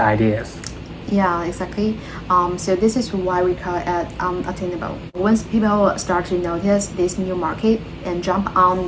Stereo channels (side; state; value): both; identical; correlation 1.00